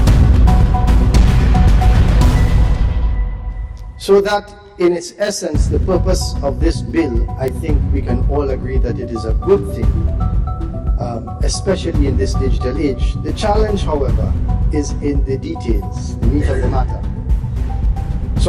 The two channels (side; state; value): both; identical; correlation 1.00